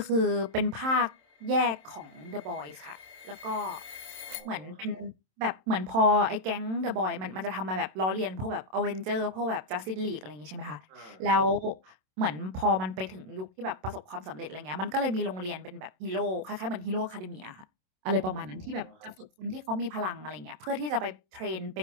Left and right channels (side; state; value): left; late; 27 ms